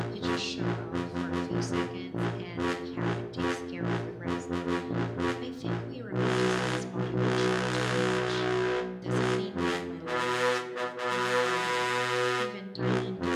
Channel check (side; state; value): both; identical; correlation 1.00